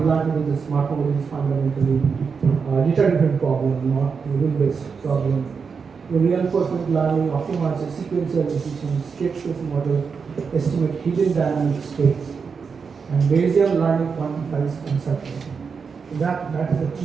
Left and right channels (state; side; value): quieter; left; 5.6 dB